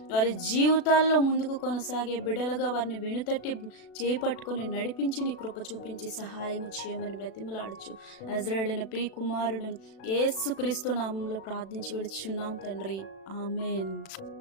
వారి జీవితాల్లో ముందుకు కొనసాగే బిడ్డలుగా వారిని వెనుతట్టి చేపట్టుకొని నడిపించి నీ కృప చూపించి సహాయం చేయమని బ్రతిమలాడచ్చు. నజరేయుడైన ప్రియ కుమారుడును యేసుక్రీస్తు నామంలో ప్రార్థించి విడుచున్నాం తండ్రి. ఆమేన్.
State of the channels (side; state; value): right; late; 36 ms